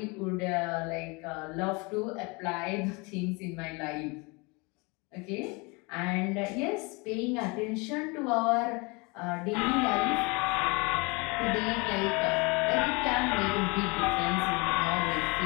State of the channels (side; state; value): right; quieter; 28.2 dB